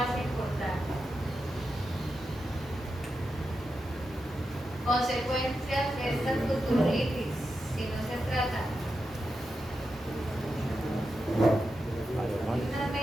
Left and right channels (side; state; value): both; normal; correlation 0.88